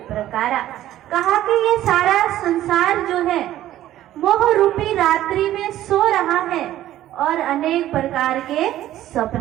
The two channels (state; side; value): quieter; left; 13.4 dB